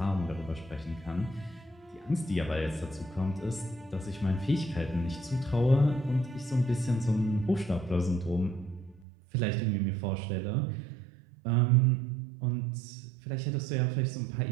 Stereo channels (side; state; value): left; drops out; at 9.1 s